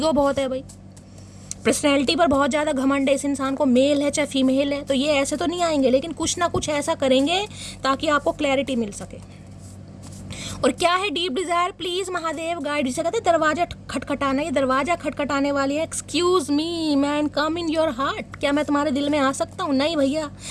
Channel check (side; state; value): both; identical; correlation 1.00